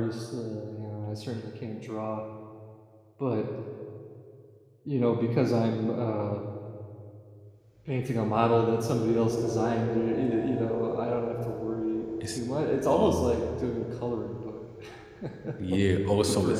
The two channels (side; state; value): both; identical; correlation 1.00